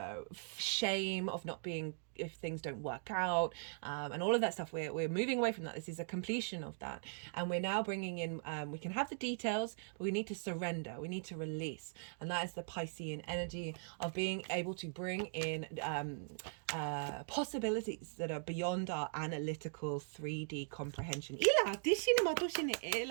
shame of not being, if things don't work out, and all of that stuff. We're moving away from that. This is a completion of that, and we're now bringing in, we can have the details, but we need to surrender, we need to release, and that is the Piscean energy of being able to bring in possibilities that are beyond our analytical 3D comprehension.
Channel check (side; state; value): left; silent; digital silence